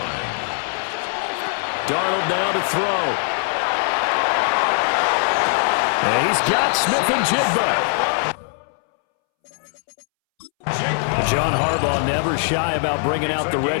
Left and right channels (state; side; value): silent; right; 65 dB below the other